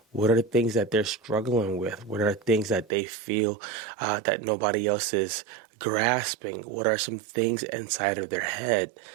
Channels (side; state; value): left; drops out; at 2.9 s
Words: What are the things that they're struggling with? What are the things that they feel that nobody else is grasping? What are some things inside of their head?